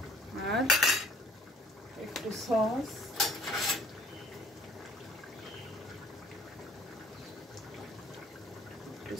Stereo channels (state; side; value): normal; both; correlation 0.56